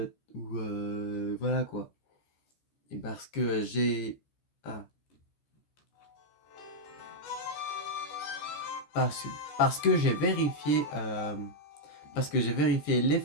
voilà quoi. Et parce que j'ai ah, parce, parce que j'ai vérifié les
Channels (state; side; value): late; right; 14 ms